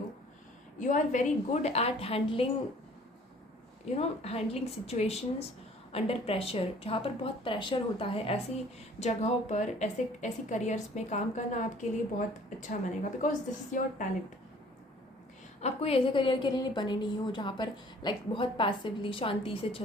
You are very good at handling, handling situations under pressure, जहाँ पर बहुत प्रेशर होता है, ऐसी जगहों पर ऐसी करियर्स में काम करना आपके लिए बहुत अच्छा बनेगा, because this is your talent. आप कोई ऐसे करियर के लिए बने नहीं हो जहाँ पर बहुत पैसिवली शांति से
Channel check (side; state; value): both; normal; correlation 0.54